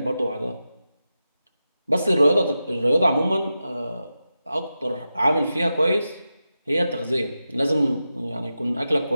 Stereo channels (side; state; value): both; inverted; correlation -0.91